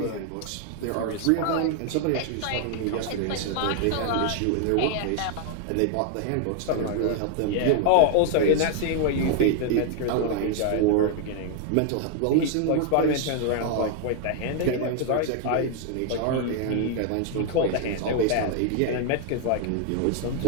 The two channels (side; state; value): both; different; correlation 0.00